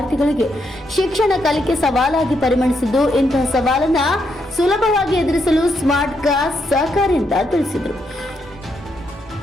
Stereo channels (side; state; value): both; normal; correlation 0.79